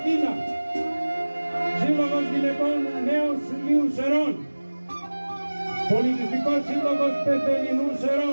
Σύλλογος Γυναικών Νέων Σουλίου Σερών, Πολιτιστικός Σύλλογος Πεθελινού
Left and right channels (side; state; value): both; inverted; correlation -1.00